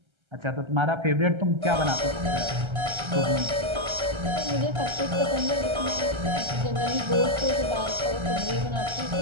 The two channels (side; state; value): left; late; 1.3 ms